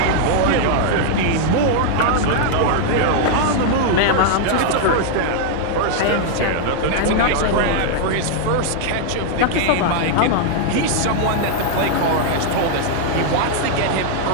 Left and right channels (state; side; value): different; both; correlation 0.00